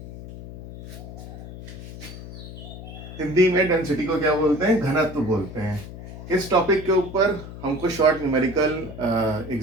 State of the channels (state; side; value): noise; left; hum, 12 dB below the sound